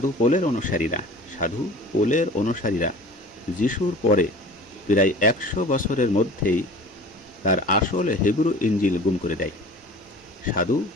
পোলের অনুসারীরা যিশুর পরে প্রায় 100 বছরের মধ্যেই তার আসল হিব্রু ইঞ্জিল গুম করে দেয়। সাধু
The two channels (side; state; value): both; normal; correlation 0.42